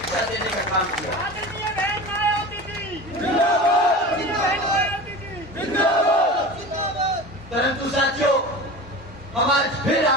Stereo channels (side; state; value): both; normal; correlation 0.33